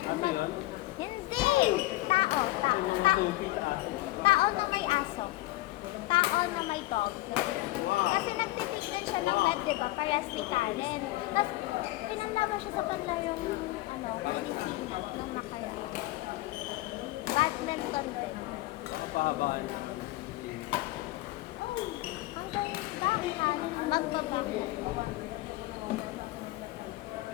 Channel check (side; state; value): right; quieter; 18.5 dB